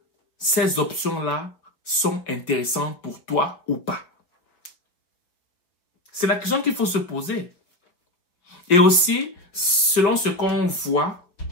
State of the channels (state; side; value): late; right; 5.7 ms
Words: ces options-là sont intéressantes pour toi ou pas? C'est la question qu'il faut se poser. Et aussi, selon ce qu'on voit,